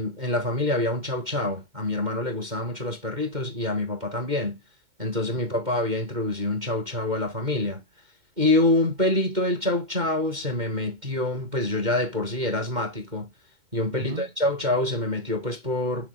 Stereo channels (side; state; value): left; late; 2.1 ms